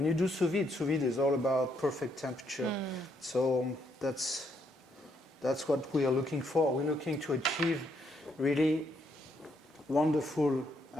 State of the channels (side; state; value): both; normal; correlation 0.74